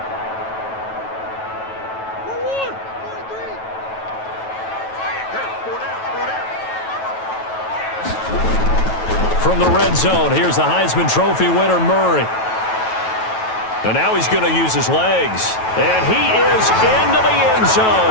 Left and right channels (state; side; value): late; right; 9.2 ms